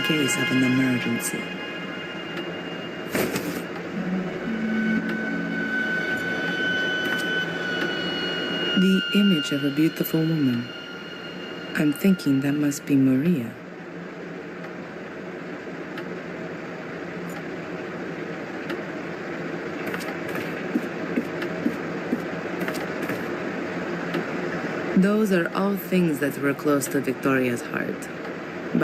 case of an emergency. The image of a beautiful woman. I'm thinking that must be Maria. Those are all things that were close to Victoria's heart.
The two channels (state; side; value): identical; both; correlation 1.00